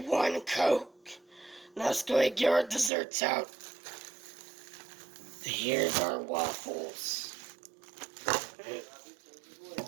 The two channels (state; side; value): drops out; left; at 2.9 s